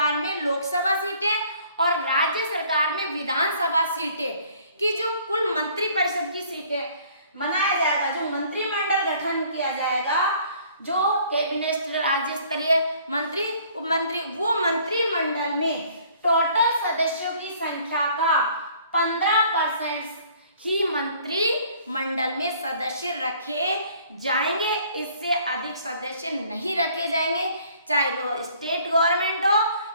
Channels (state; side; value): inverted; both; correlation -0.57